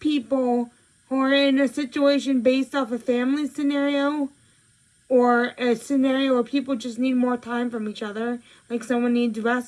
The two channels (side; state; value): both; identical; correlation 1.00